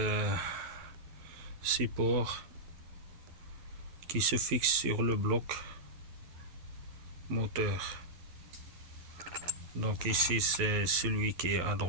support qui se fixe sur le bloc moteur. Donc ici c'est celui qui est à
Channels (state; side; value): late; left; 11 ms